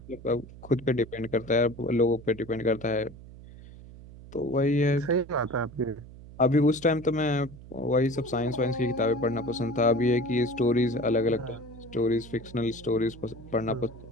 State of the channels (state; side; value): noise; right; hum, 17 dB below the sound